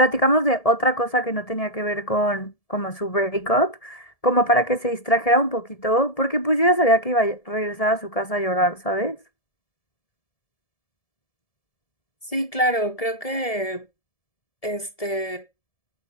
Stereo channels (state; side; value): late; right; 1.7 ms